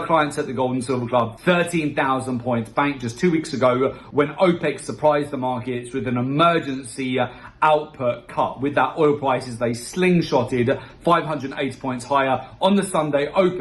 clients at the Gold and Silver Club. 13,000 points banked just 2 weeks ago when OPEC surprised the markets with an emergency output cut. With that, oil prices, they slingshotted 580 points higher on the Sunday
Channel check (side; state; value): both; identical; correlation 1.00